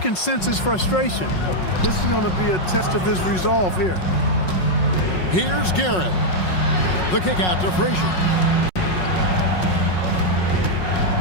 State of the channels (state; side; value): late; right; 5.4 ms